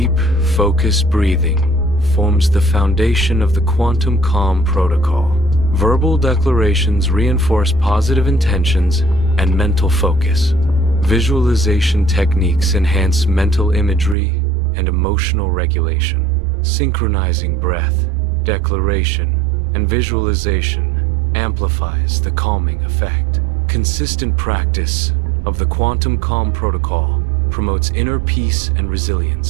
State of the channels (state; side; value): drops out; left; at 14.2 s